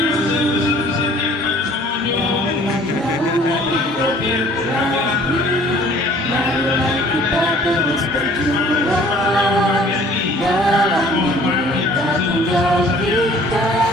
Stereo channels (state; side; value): normal; both; correlation 0.53